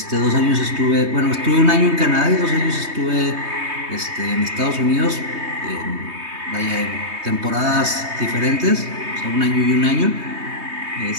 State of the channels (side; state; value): left; late; 3.2 ms